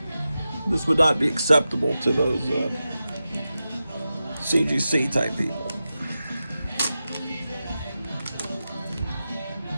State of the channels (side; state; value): both; inverted; correlation -0.92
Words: this would not be acceptable to those CGC type people.